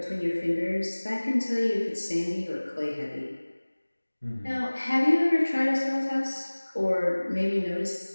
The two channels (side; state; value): both; inverted; correlation -1.00